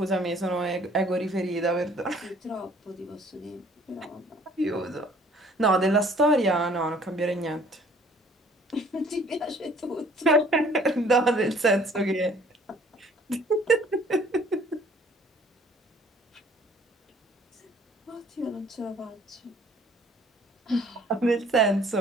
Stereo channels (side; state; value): both; normal; correlation 0.56